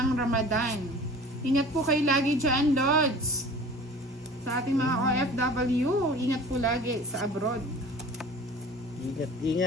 Ramadan. Ingat po kayo lagi dyan, Lods. Sa ating mga OFW, ingat po lagi sa abroad.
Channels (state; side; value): normal; both; correlation 0.43